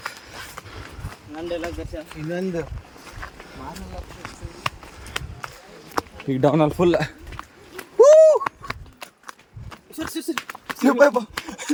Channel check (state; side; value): identical; both; correlation 1.00